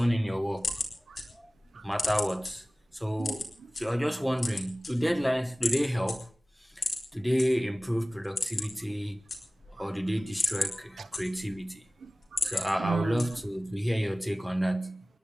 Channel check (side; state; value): both; normal; correlation 0.97